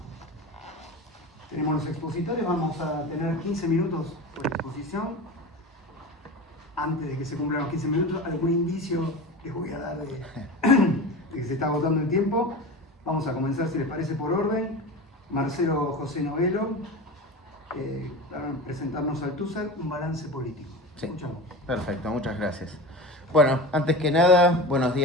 Tenemos los expositores, vamos a tener 15 minutos por exposición. Antes de que se cumplan los 15 minutos, algún indicio les voy a dar de que se está agotando el tiempo. Vamos a comenzar, si les parece, por orden. Marcelo José Novelo, para presentarnos Althusser, un balance político. Sí. Escuchamos. Perfecto, muchas gracias. Bueno, antes que nada, buenos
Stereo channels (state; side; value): normal; both; correlation 0.30